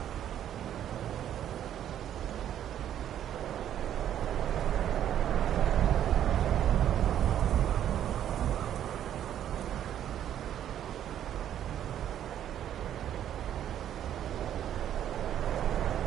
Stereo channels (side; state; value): left; quieter; 10.6 dB